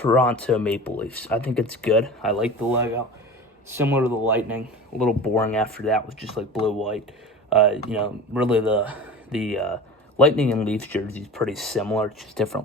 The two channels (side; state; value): both; normal; correlation 0.35